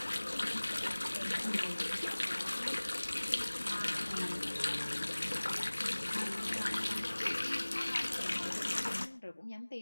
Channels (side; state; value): both; inverted; correlation -1.00